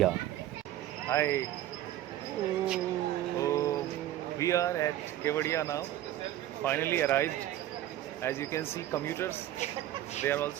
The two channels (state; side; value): quieter; left; 13.3 dB